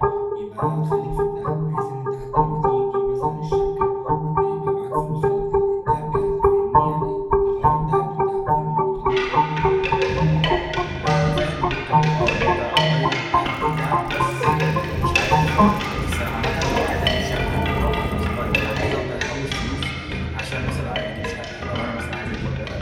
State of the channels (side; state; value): both; identical; correlation 1.00